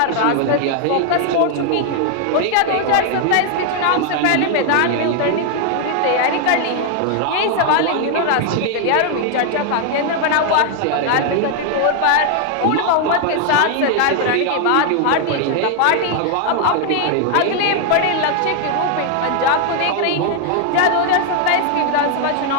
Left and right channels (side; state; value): both; different; correlation 0.00